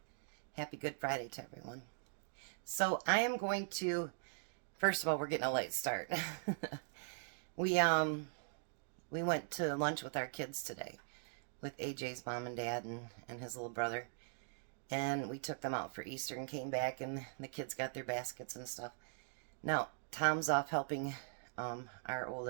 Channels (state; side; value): silent; left; digital silence